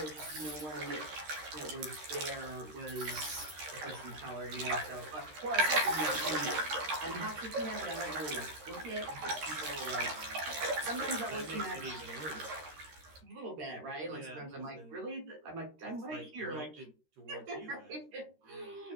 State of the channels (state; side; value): late; left; 13 ms